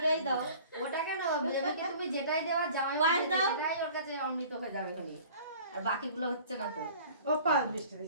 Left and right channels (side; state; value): both; inverted; correlation -0.47